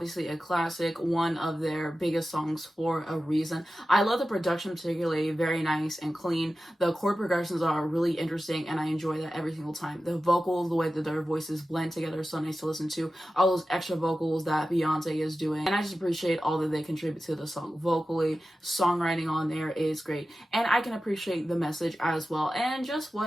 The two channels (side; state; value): both; normal; correlation 0.94